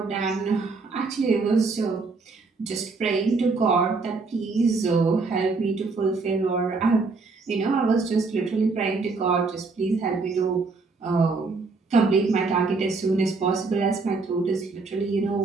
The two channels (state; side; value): quieter; left; 4.1 dB